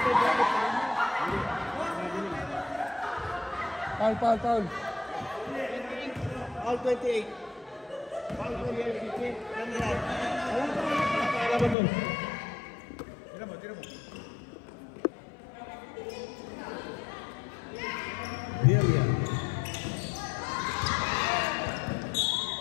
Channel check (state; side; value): drops out; right; at 11.8 s